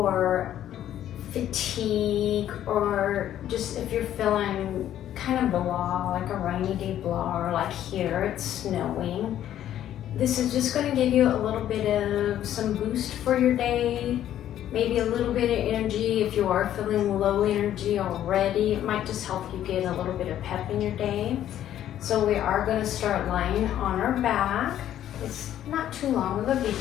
fatigue or just if you're feeling kind of blah, like a rainy day blah, or like here it's snowing. This is just going to give you a little bit of some boost for your day. Maybe a little bit of energy if you are feeling low energy already. It might just help you get a little bit of pep in your day. So we are going to start lying on our back. It's not too long of a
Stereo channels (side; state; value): right; quieter; 11.5 dB